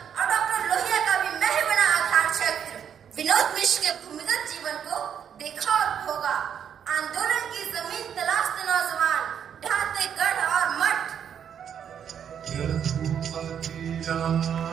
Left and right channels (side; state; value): left; quieter; 8.4 dB